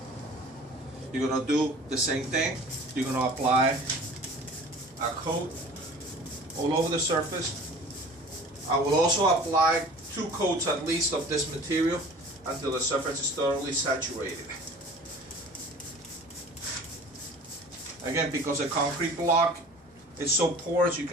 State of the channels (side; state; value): both; normal; correlation 0.44